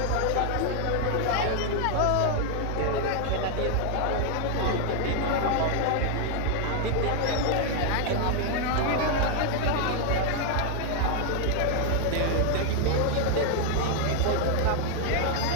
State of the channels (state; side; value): different; both; correlation 0.00